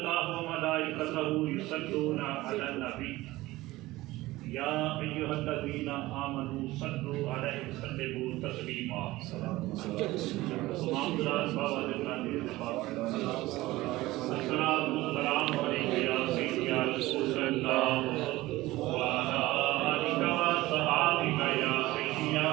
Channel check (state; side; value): quieter; left; 18.4 dB